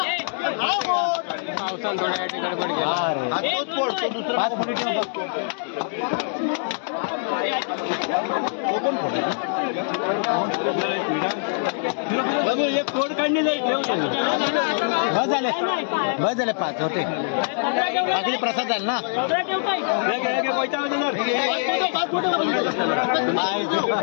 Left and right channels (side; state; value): right; silent; digital silence